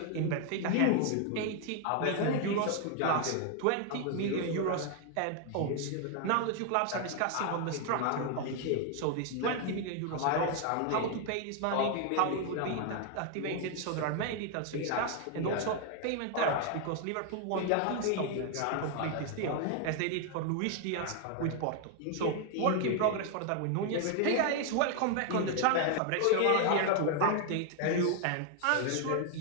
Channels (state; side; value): different; both; correlation 0.00